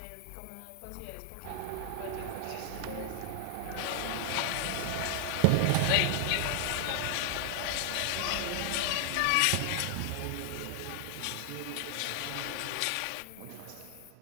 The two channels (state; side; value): different; both; correlation 0.00